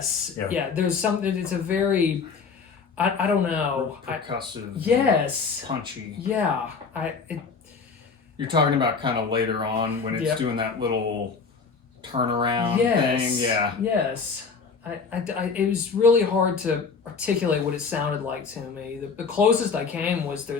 Yeah. there's something. It's a very, I don't know. Percussive. Yes. Punchy. Yeah. You're talking about kind of later on when it's Yep. doing that little turnaround Yes. thing. Yeah. Yes. It was really hard to articulate what it sounded like to me. The closest I came was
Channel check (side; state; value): right; quieter; 5.2 dB